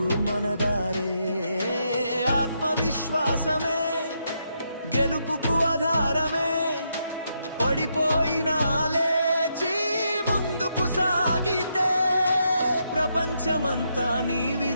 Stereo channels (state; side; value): inverted; both; correlation -0.79